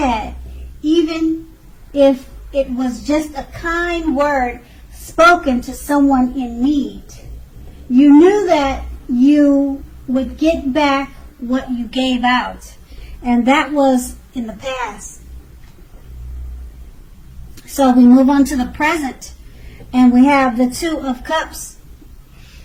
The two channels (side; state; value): both; identical; correlation 1.00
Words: even if it was just a kind word spoken to someone in need. You knew that you would get back what you gave out, and that was in the past. So we move on to the present, and we have the Two of Cups.